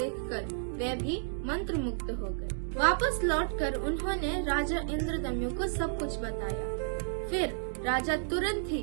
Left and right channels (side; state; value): left; silent; digital silence